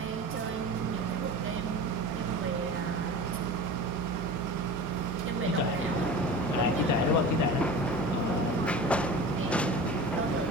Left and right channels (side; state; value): both; normal; correlation 0.35